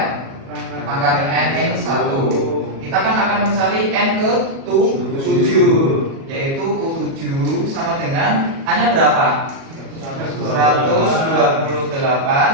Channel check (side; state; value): left; late; 37 ms